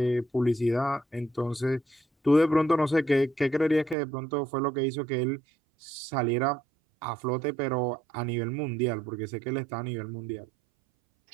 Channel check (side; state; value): left; drops out; at 4.0 s